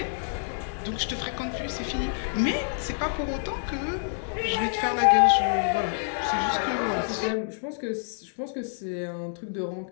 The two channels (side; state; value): right; silent; digital silence